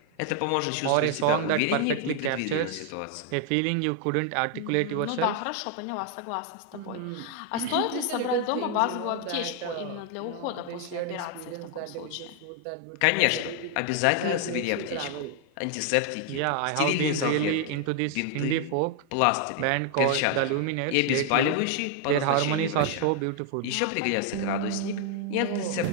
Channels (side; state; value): both; different; correlation 0.00